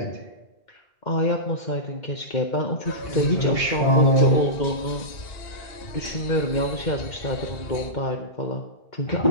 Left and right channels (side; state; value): right; late; 2.1 ms